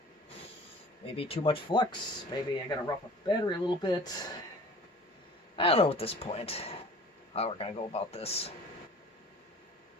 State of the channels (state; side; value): normal; both; correlation 0.45